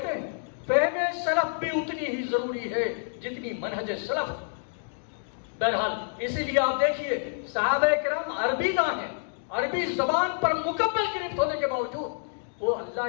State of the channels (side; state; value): right; silent; digital silence